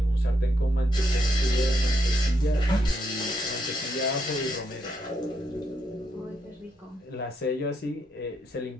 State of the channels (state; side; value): normal; both; correlation 0.78